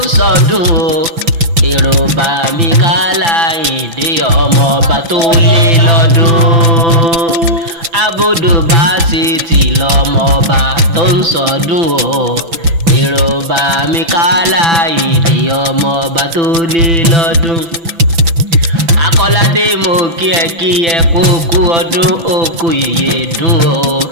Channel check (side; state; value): left; late; 6.0 ms